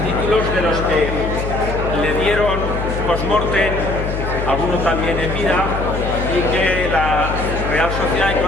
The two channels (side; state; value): left; noise; hum, 4 dB below the sound